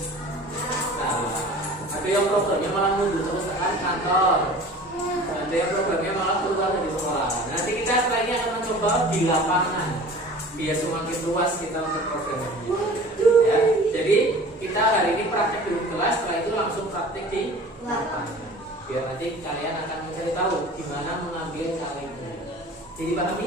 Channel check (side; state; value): both; normal; correlation 0.42